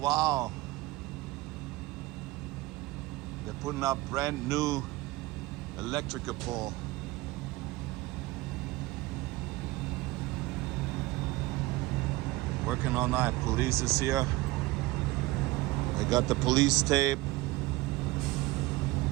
wow. They're putting up brand new electrical pole. Working all night. Police is here. They got the police tape.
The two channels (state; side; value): quieter; left; 19.8 dB